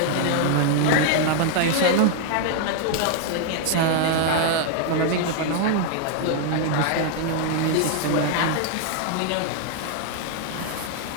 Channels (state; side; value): different; both; correlation 0.00